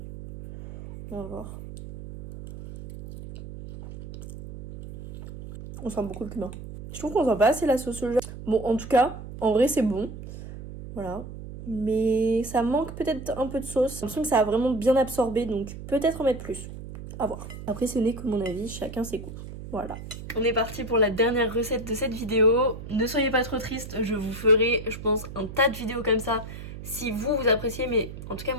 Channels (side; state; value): right; noise; hum, 11 dB below the sound